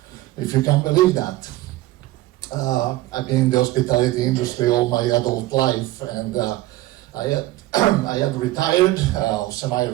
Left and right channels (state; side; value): quieter; left; 16.8 dB